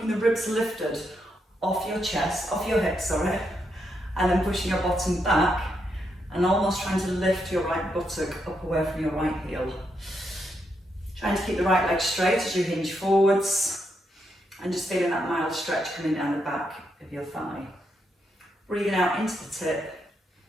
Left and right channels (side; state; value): both; normal; correlation 0.80